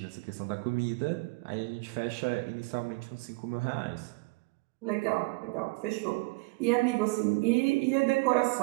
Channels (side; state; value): left; quieter; 26.1 dB